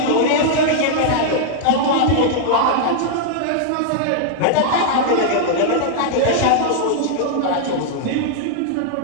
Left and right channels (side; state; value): both; different; correlation -0.01